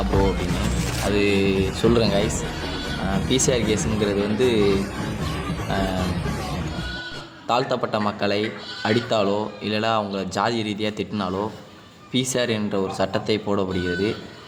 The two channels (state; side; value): identical; both; correlation 1.00